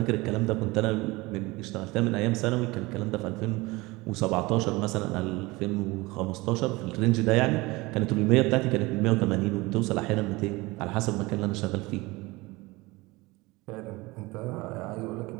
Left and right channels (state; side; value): quieter; left; 22.3 dB